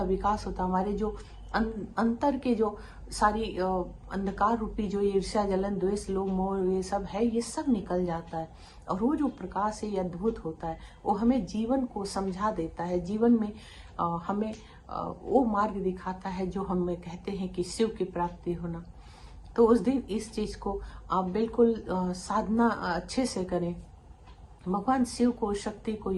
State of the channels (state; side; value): identical; both; correlation 1.00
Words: विकास होता है। हमारे जो अंतर के जो सारी अंधकार रूपी जो ईर्ष्या, जलन, द्वेष, लोभ, मोह, ये सब है, ये सब निकल जाता है। और वो जो प्रकाश है, ये अद्भुत होता है। वो हमें जीवन को समझा देता है, जीवन में हमें वो मार्ग दिखाता है जो हमें कहते हैं कि शिव की प्राप्ति होना। तो उस दिन इस चीज को आप बिल्कुल साधना अच्छे से करें, भगवान शिव को, शक्ति को